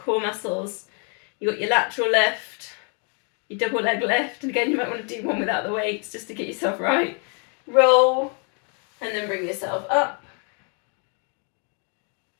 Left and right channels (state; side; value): quieter; right; 38.7 dB